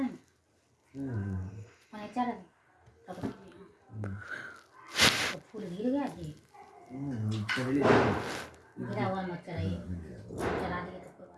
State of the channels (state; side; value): identical; both; correlation 1.00